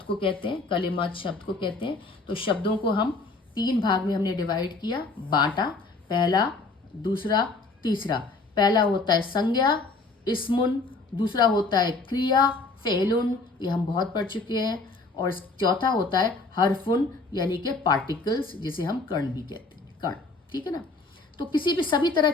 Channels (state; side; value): quieter; right; 3.6 dB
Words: को कहते हैं, कलिमात शब्द को कहते हैं। तो शब्दों को हम 3 भाग में हमने डिवाइड किया, बांटा, पहला, दूसरा, तीसरा। पहला होता है संज्ञा, इस्मुन, दूसरा होता है क्रिया, फेलुन, ये हम बहुत पढ़ चुके हैं। और चौथा होता है हरफुन यानी कि पार्टिकल्स, जिसे हम कर्ण भी कहते हैं, कर्ण, ठीक है ना। तो किसी भी सभी तरह